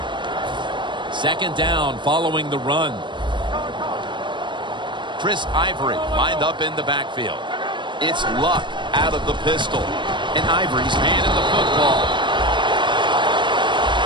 Second down following the run. Chris Ivory lined up in the backfield. It's Luck out of the pistol. And Ivory's handed the football.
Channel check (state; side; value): late; left; 0.23 ms